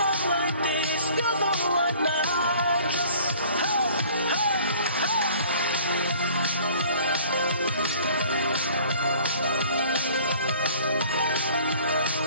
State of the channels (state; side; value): inverted; both; correlation -0.51